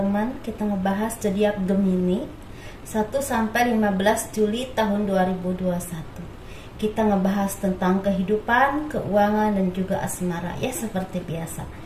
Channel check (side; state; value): both; identical; correlation 1.00